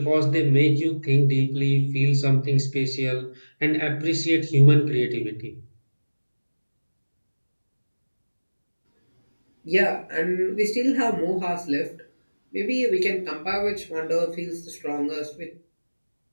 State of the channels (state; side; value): inverted; both; correlation -1.00